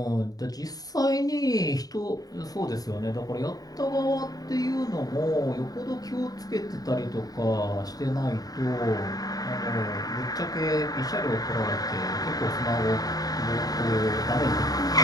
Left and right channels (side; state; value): right; late; 0.18 ms